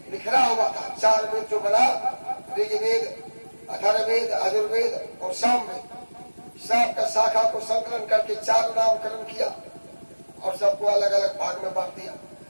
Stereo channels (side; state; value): both; inverted; correlation -1.00